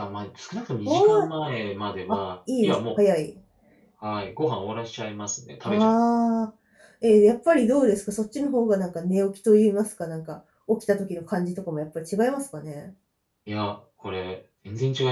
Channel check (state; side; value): identical; both; correlation 1.00